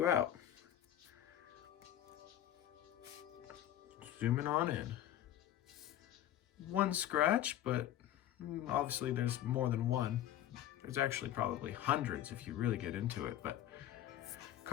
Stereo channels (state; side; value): quieter; right; 12.0 dB